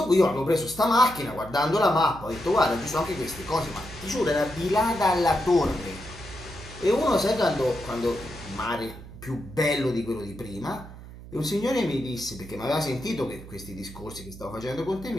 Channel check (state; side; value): noise; right; hum, 15 dB below the sound